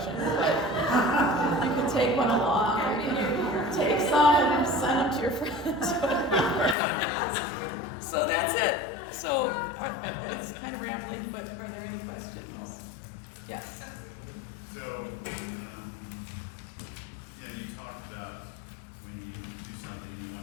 but you can take one along, or you can take some and send them to your friends. So that's it. So it's kind of rambling, but are there any questions? Yes. So, you talked about when you do something, you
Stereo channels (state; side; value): drops out; right; at 6.8 s